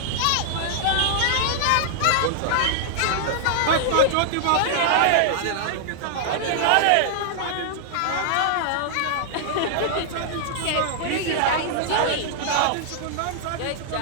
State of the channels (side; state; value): both; different; correlation -0.01